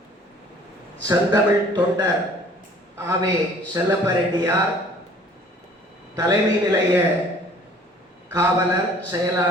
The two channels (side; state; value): both; normal; correlation 0.53